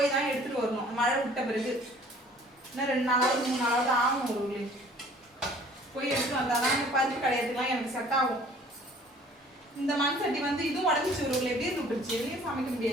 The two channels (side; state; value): both; normal; correlation 0.53